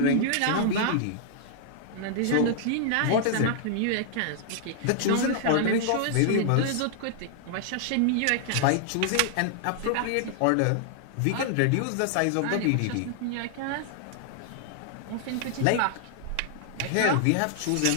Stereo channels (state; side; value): different; both; correlation -0.01